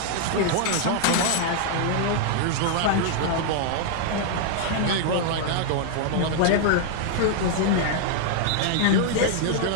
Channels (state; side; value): different; both; correlation 0.00